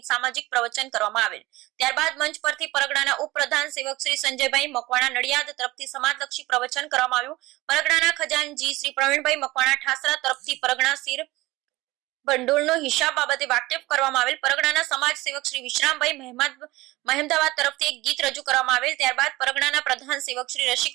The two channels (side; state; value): left; quieter; 19.6 dB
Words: સામાજિક પ્રવચન કરવામાં આવેલ। ત્યારબાદ મંચ પરથી પરગણાના ઉપપ્રધાન સેવક શ્રી સંજયભાઈ મકવાણા નડિયાદ તરફથી સમાજલક્ષી પ્રવચન કરવામાં આવ્યું। પરગણાના ખજાનજી શ્રી પ્રવીણભાઈ મકવાણા ઠાસરા તરફથી પરગણા શિર ભંડોળનો હિસાબ બાબતે વાકેફ કરવામાં આવેલ। પરગણાના સમાજ સેવક શ્રી વિશ્રામભાઈ મહેમદાવાદ તરફથી એક ગીત રજૂ કરવામાં આવેલ। ત્યારબાદ પરગણાના પ્રધાન સેવક શ્રી